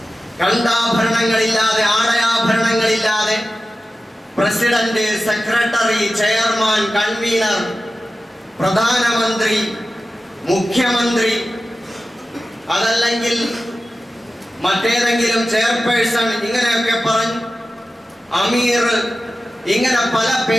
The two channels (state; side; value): normal; both; correlation 0.94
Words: കണ്ടാഭരണങ്ങളില്ലാതെ, ആടയാഭരണങ്ങളില്ലാതെ പ്രസിഡന്റ്, സെക്രട്ടറി, ചെയർമാൻ, കൺവീനർ, പ്രധാനമന്ത്രി, മുഖ്യമന്ത്രി, അതല്ലെങ്കിൽ മറ്റേതെങ്കിലും ചെയർപേഴ്സൺ, ഇങ്ങനെയൊക്കെ പറഞ്ഞ് അമീർ, ഇങ്ങനെ പല